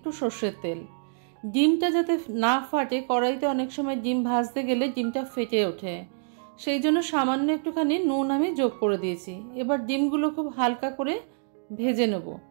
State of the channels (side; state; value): left; silent; digital silence